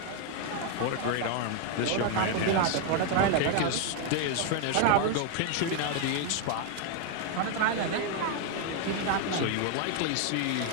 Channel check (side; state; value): both; different; correlation 0.00